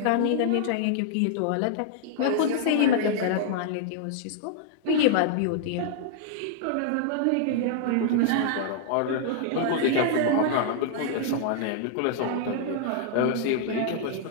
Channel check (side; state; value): both; different; correlation -0.01